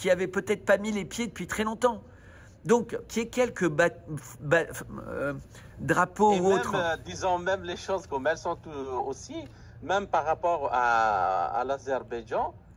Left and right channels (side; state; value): both; identical; correlation 1.00